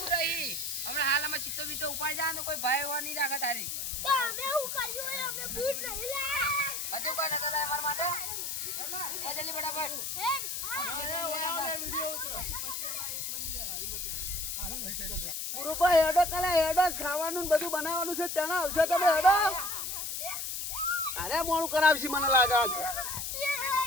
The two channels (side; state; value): left; noise; hiss, 3 dB below the sound